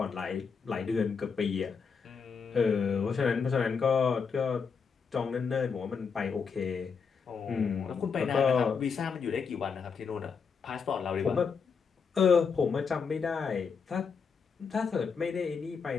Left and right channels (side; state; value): right; quieter; 5.8 dB